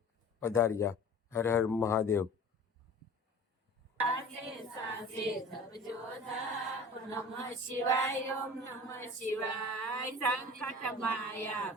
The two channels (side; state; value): both; normal; correlation 0.41